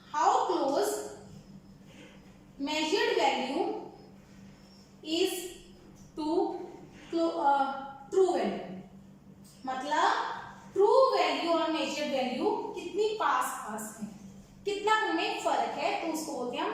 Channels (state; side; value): identical; both; correlation 1.00